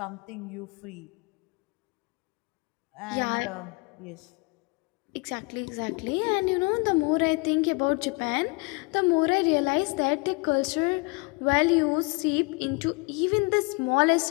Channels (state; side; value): quieter; right; 29.3 dB